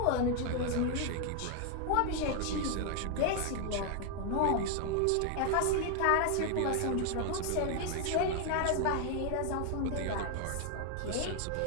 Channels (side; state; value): both; different; correlation 0.00